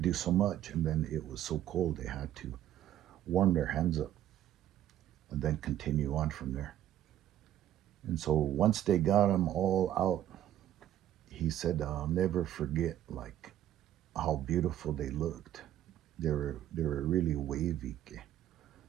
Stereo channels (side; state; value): left; quieter; 12.1 dB